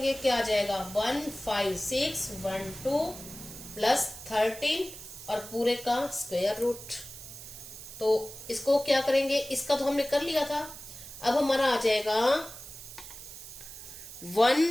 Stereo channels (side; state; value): right; noise; hiss, 13 dB below the sound